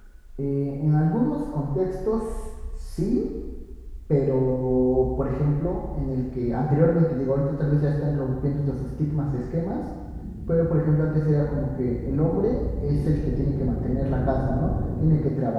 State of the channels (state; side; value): identical; both; correlation 1.00